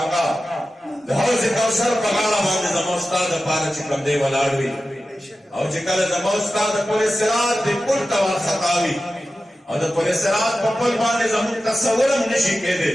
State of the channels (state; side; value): normal; both; correlation 0.93